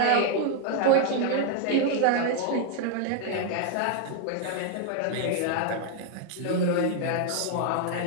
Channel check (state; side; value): different; both; correlation 0.00